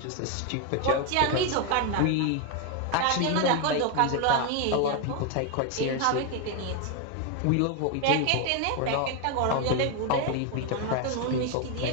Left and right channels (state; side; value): different; both; correlation 0.01